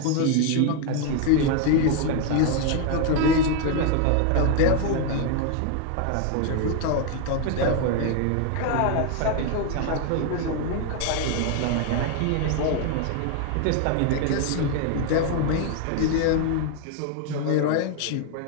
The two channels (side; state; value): both; different; correlation 0.01